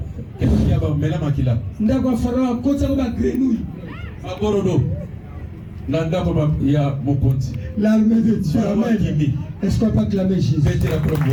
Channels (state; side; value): identical; both; correlation 1.00